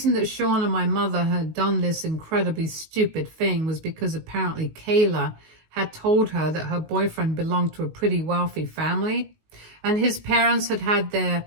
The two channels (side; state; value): left; late; 19 ms